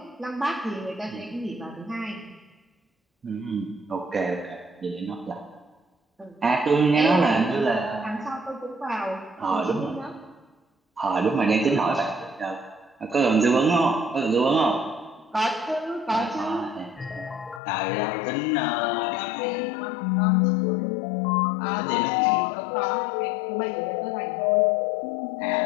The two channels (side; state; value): right; drops out; at 17.6 s